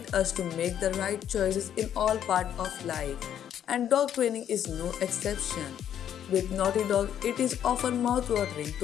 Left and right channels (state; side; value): quieter; right; 9.9 dB